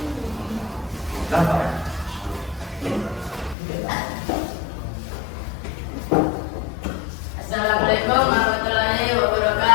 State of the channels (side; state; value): right; drops out; at 3.6 s